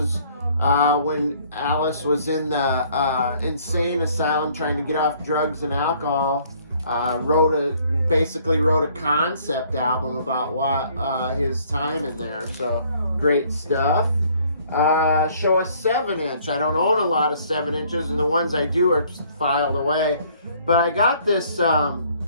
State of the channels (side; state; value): both; inverted; correlation -0.61